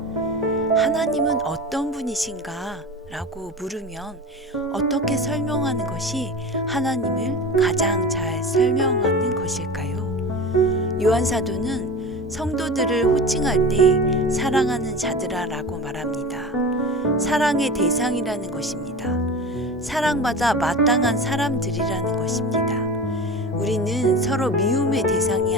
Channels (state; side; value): normal; both; correlation 0.31